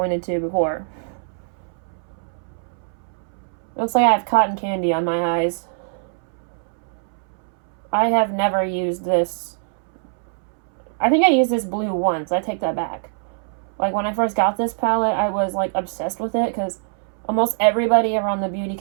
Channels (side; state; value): left; silent; 64 dB below the other